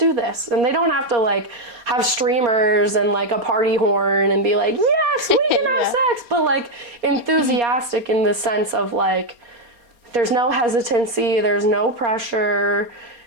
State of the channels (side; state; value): left; late; 4.3 ms